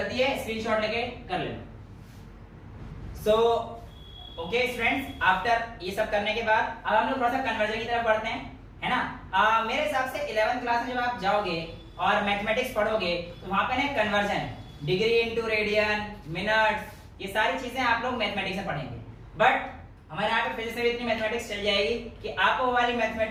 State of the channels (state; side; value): identical; both; correlation 1.00